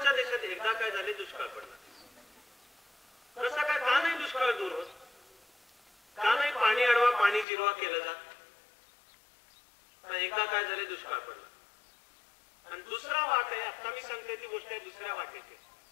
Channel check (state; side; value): drops out; right; at 7.5 s